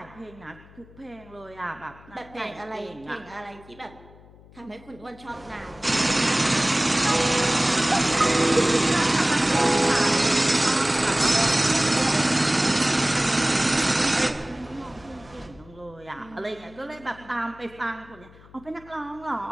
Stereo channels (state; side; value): noise; left; hum, 23 dB below the sound